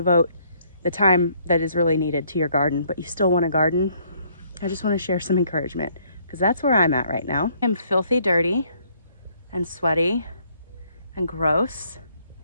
the time that is really needed to your garden, but you still want to garden, I just want to share some encouragement. Because that's where I'm at right now. I'm filthy dirty and sweaty and gross.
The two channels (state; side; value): inverted; both; correlation -0.66